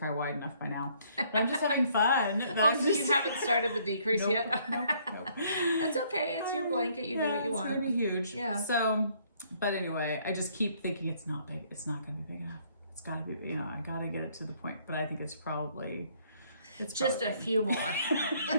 wide enough by now. But I'm just having fun. So you haven't started the decrease yet? Nope. It's okay. It's your blanket. You do what you want. It's going to be huge. Yeah. So, but anyway, I just keep thinking it's not big. It's not going to be big enough. It's got to be, you know, I got to get it to the point. But I think it's probably a few more.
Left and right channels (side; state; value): both; inverted; correlation -0.64